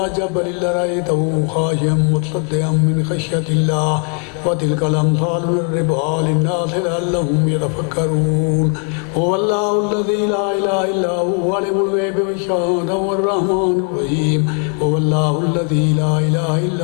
जबलिन लरअयतहु खाशिअम मुतसद्दिअम मिन खश्यतिल्लाह व तिलकल अम्सालु नज़रिबुहा लिन्नासि लअल्लहुम यतफ़क्करून हुवल्लाहुल्लज़ी ला इलाहा इल्ला हुवा आलिमुल ग़ैबि वश्शहादति हुवर्रहमानुर रहीम हुवल्लाहुल्लज़ी ला इलाहा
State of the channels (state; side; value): quieter; right; 38.9 dB